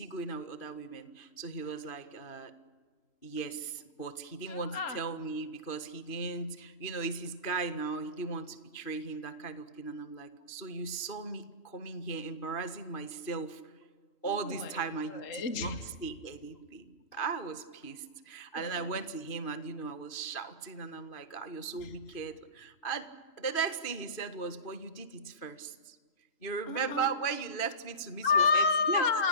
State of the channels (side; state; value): right; late; 2.5 ms